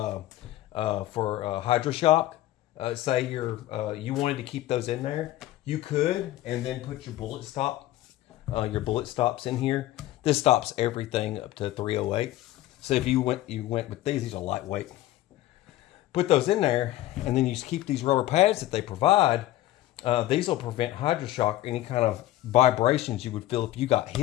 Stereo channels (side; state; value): right; quieter; 15.1 dB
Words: hydroshock. Say you wanted to keep those in there, you could, and then put your bullet stops in here. This stops everything up to 308. So if you went with these are lightweight. Put those in there, and then you just keep these rubber pads that they provide. These will prevent hydroshock, any kind of vibrations you would feel if you got